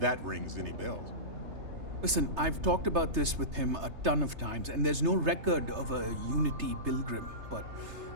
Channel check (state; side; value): late; left; 3.3 ms